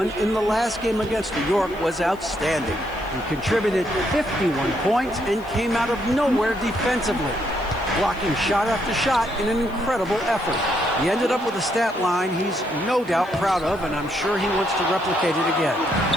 in the last game against New York was outstanding. He contributed 51 points and came out of nowhere defensively, blocking shot after shot in an incredible effort. He ended up with a stat line he's no doubt proud of, and I'm sure he wants to replicate it again.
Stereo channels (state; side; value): noise; left; hiss, 27 dB below the sound